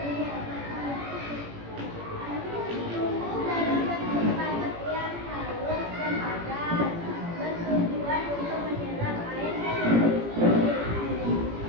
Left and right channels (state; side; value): late; left; 17 ms